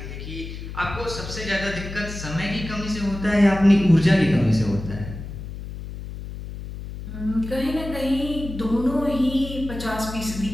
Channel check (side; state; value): left; noise; hum, 9 dB below the sound